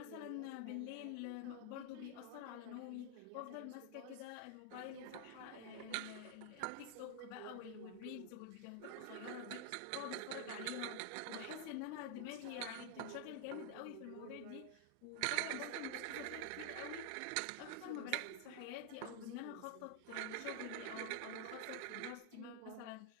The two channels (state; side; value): different; both; correlation 0.00